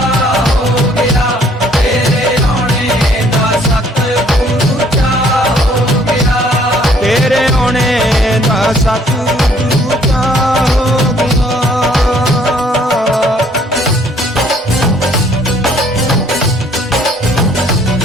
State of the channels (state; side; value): normal; both; correlation 0.61